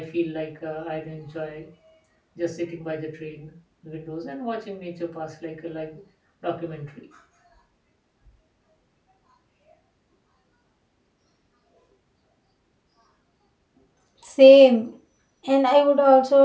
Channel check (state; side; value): identical; both; correlation 1.00